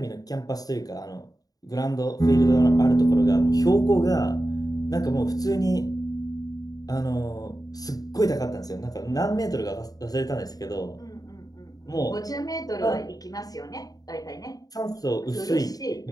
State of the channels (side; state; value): right; late; 0.18 ms